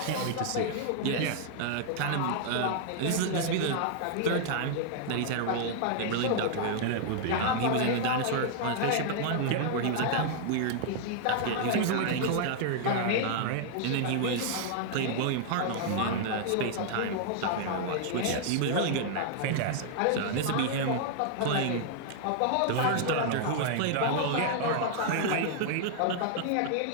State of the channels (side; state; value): both; different; correlation -0.01